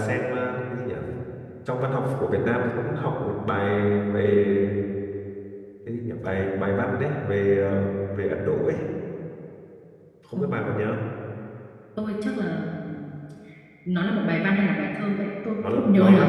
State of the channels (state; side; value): identical; both; correlation 1.00